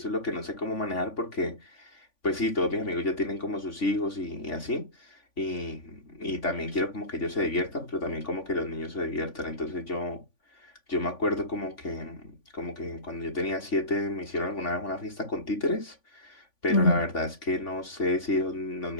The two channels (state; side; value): late; right; 3.5 ms